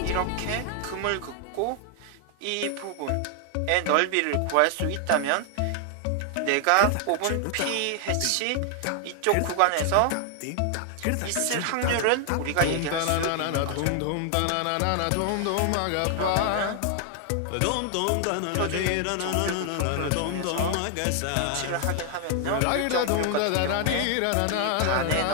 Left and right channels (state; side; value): different; both; correlation 0.00